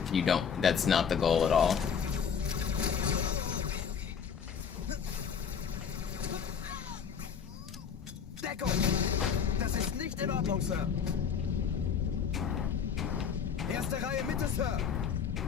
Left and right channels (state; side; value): quieter; right; 7.1 dB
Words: That's not the goal at all. Deckung! Das ist nicht in Ordnung, Sir. Erste Reihe Mitte, Sir.